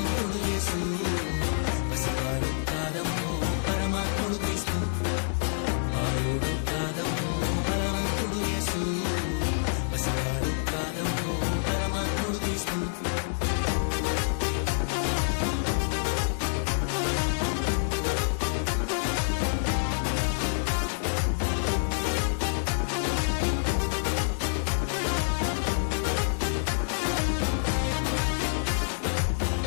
యేసు పసివాడు కాదమ్మో పరమాత్ముడు క్రీస్తు బాలుడు కాదమ్మో బలవంతుడు యేసు పసివాడు కాదమ్మో పరమాత్ముడు క్రీస్తు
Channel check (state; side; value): silent; right; 60 dB below the other